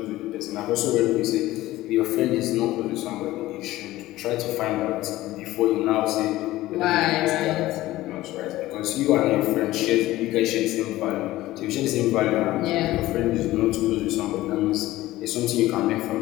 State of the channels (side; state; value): right; quieter; 16.6 dB